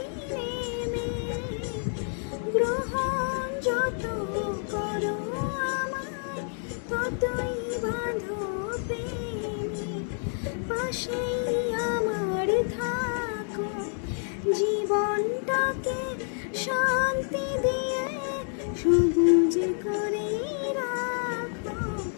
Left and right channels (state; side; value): silent; right; 55 dB below the other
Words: নেমে, গ্রহণ যত করো আমায়, ততই বাঁধো প্রেমে। পাশেই আমার থাকো, জীবনটাকে শান্তি দিয়ে সবুজ করে রাখো।